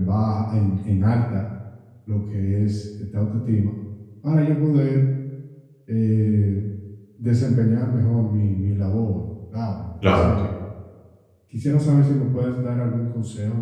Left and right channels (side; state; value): both; identical; correlation 1.00